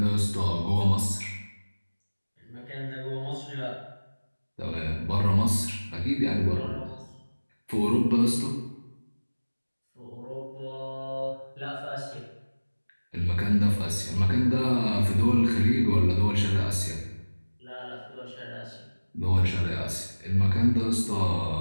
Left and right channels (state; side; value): inverted; both; correlation -1.00